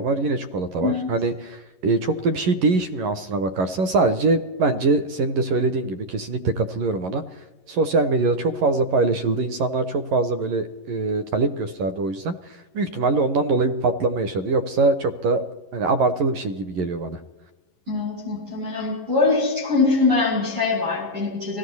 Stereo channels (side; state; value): left; late; 11 ms